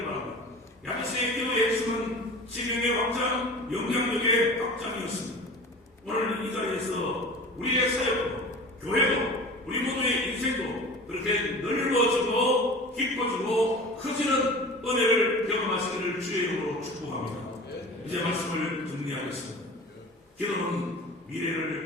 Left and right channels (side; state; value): both; normal; correlation 0.37